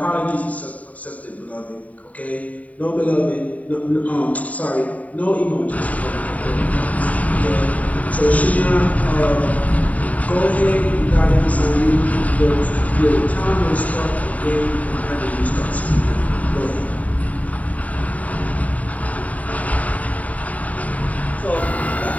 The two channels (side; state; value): right; late; 0.070 ms